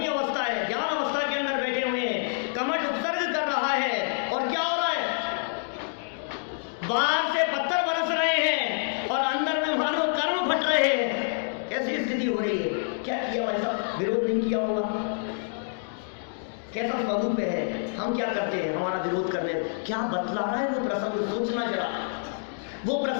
अवस्था है, ज्ञान अवस्था के अंदर बैठे हुए हैं, कमठ उपसर्ग कर रहा है। और क्या हो रहा है? बाहर से पत्थर बरस रहे हैं और अंदर में मानो कर्म फट रहे हैं। कैसी स्थिति हो रही है? क्या किया भाई साहब? विरोध नहीं किया होगा। कैसा स्वरूप है? हम क्या करते हैं हमारा विरोध करने? क्या बतला रहा है वो प्रसंग? सोचना जरा, वो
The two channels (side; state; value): right; silent; digital silence